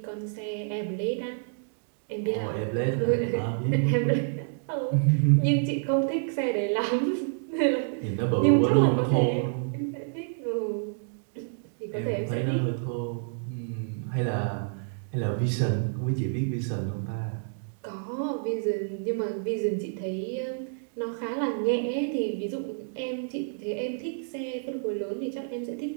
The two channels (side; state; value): left; silent; digital silence